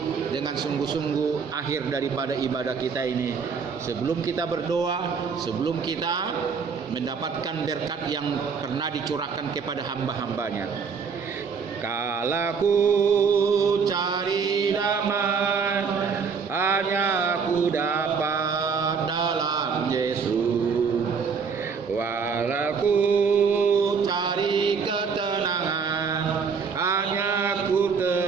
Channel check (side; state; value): left; quieter; 5.7 dB